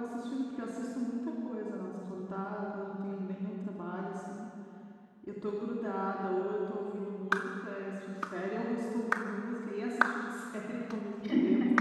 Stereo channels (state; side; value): identical; both; correlation 1.00